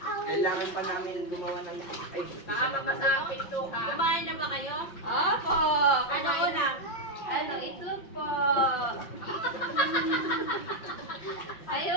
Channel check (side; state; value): right; late; 6.0 ms